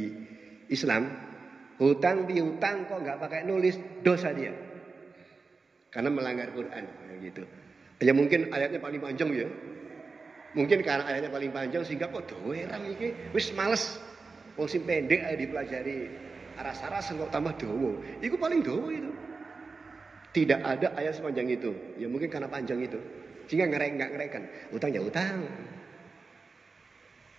Islam, hutang piutang kok nggak pakai nulis, dosa dia, karena melanggar Quran gitu. Ya mungkin ayatnya paling panjang ya, mungkin karena ayatnya paling panjang sehingga kok doeram iki, wis males, wong sing pendek aja dipelajari aras-aras kok tambah dowo, itu paling dowo itu. Tidak ada ayat sepanjang itu, ya mungkin karena panjang itu, sehingga nggak ngerekan. Utang ya utang.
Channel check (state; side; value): quieter; left; 4.3 dB